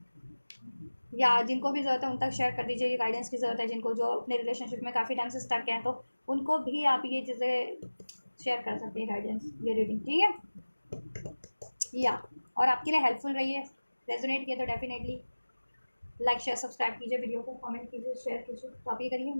या जिनको भी ज़रूरत है उन तक शेयर कर दीजिए, ये गाइडेंस की ज़रूरत है जिनको, जो अपने रिलेशनशिप में काफ़ी टाइम से स्टक हैं, तो उनको भी आप ये चीज़ें शेयर कर सकते हैं, गाइडेंस, ये रीडिंग, ठीक है। या और आपके लिए हेल्पफुल रही है, रेजोनेट किया तो डेफिनेटली लाइक शेयर सब्सक्राइब कीजिए, वीडियो को कमेंट कीजिए, शेयर कीजिए। तो आप ये करिए,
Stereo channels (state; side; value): inverted; both; correlation -1.00